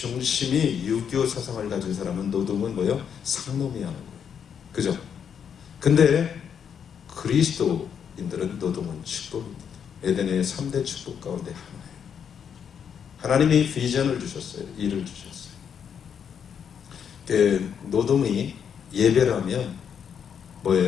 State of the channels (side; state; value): right; quieter; 7.7 dB